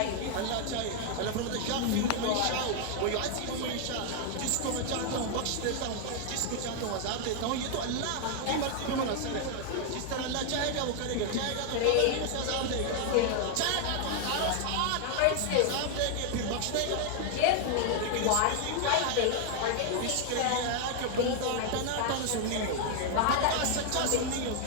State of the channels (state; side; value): different; both; correlation 0.00